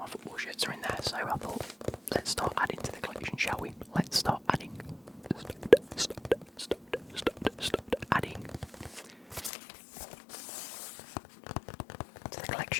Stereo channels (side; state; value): right; drops out; at 9.5 s